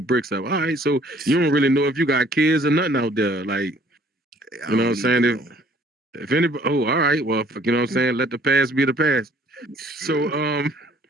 up. All right, so you don't really know if you got kids or nothing out there. Like, you know what I'm saying? If anybody, all right, well, you know what I'm saying? Let the past be the past. So,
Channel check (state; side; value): normal; both; correlation 0.58